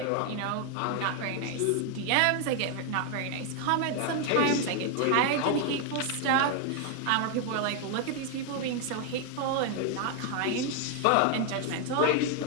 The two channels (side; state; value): both; different; correlation 0.01